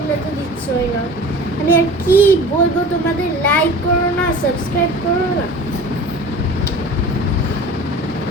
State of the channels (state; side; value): normal; both; correlation 0.40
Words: তো দিচ্ছই না। আমি আর কি বলবো তোমাদের, লাইক করো না, সাবস্ক্রাইব করো না।